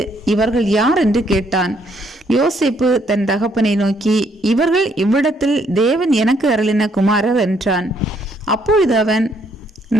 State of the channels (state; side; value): normal; both; correlation 0.69